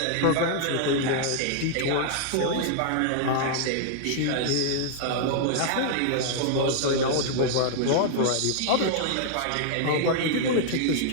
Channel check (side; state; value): both; different; correlation -0.01